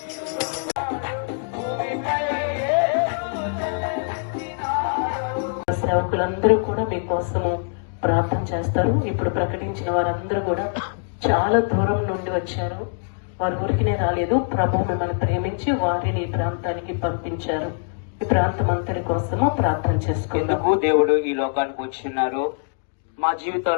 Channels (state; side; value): silent; right; digital silence